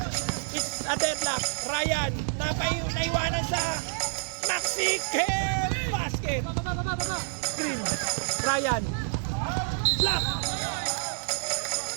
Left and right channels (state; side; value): silent; left; 57 dB below the other